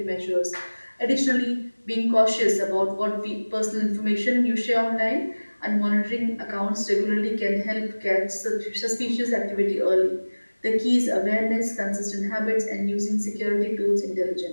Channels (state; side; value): inverted; both; correlation -1.00